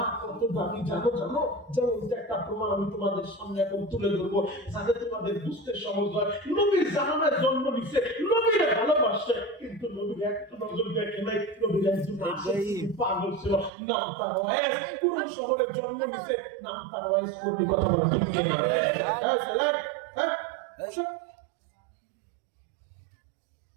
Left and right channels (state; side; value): drops out; left; at 13.7 s